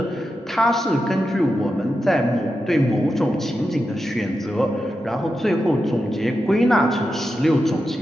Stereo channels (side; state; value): both; normal; correlation 0.89